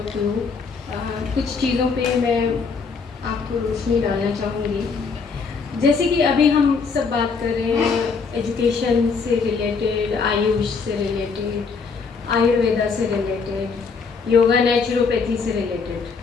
you. कुछ चीज़ों पे मैं आपको रोशनी डालना चाहूँगी। जैसे कि अभी हम सब बात कर रहे हैं एजुकेशन से रिलेटेड, आयुष से रिलेटेड, आयुर्वेदा से रिलेटेड, योगा नेचुरोपैथी से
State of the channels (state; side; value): quieter; right; 5.1 dB